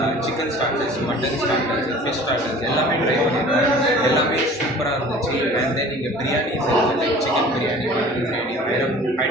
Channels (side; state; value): both; normal; correlation 0.46